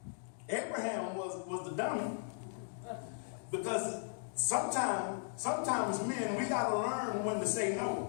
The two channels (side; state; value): right; silent; digital silence